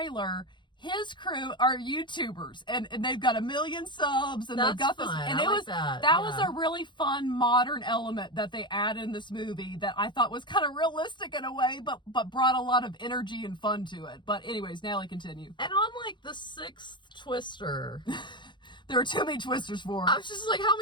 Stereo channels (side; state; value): right; late; 0.23 ms